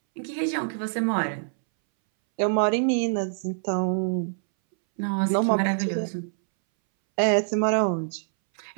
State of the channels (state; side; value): silent; left; 62 dB below the other